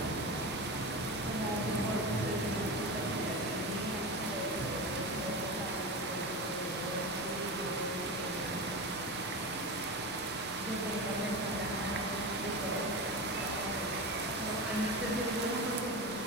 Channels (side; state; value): left; noise; rumble, 23 dB below the sound